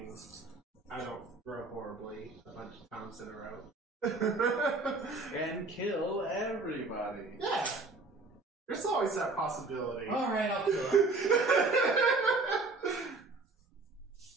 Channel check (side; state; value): left; quieter; 3.6 dB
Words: I don't roll horribly a bunch of times in a row. And kill everybody. Yeah. There's always that possibility. Alright, I'll kill him.